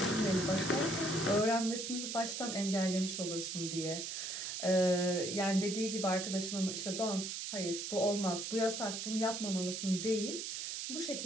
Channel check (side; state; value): right; noise; hiss, 4 dB below the sound